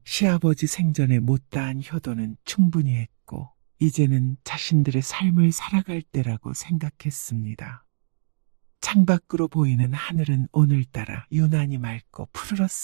시아버지 생전에 못다한 효도는 충분히 했고 이제는 자신들의 삶을 살아갈 때라고 생각했습니다. 창밖으로 보이는 하늘은 오늘따라 유난히 맑고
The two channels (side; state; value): left; silent; digital silence